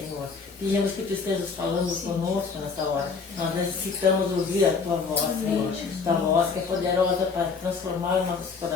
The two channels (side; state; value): right; quieter; 5.1 dB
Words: Pedimos que tu estejas falando conosco nessa hora. Nós necessitamos ouvir a tua voz, Senhor. Tua voz que é poderosa para transformar nossos